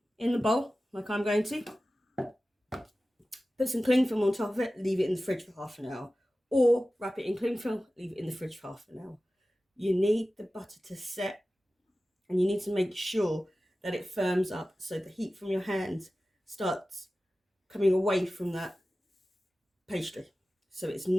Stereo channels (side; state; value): both; normal; correlation 0.95